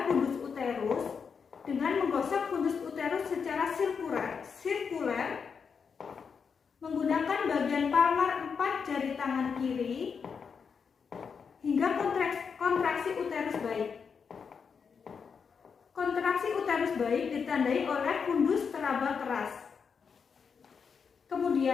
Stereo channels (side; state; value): right; quieter; 6.1 dB